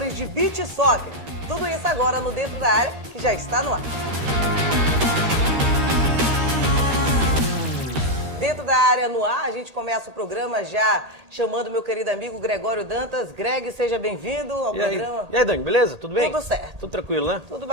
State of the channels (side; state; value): left; late; 13 ms